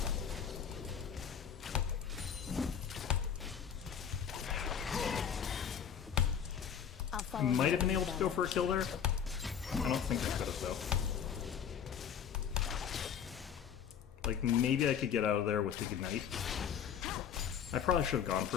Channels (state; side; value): quieter; right; 8.0 dB